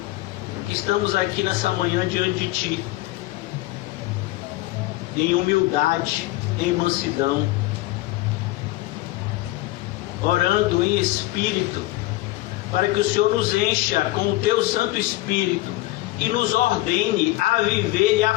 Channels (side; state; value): right; quieter; 18.4 dB